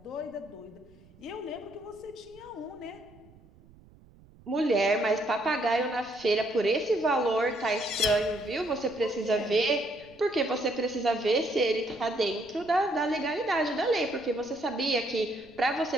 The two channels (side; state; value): right; noise; rumble, 26 dB below the sound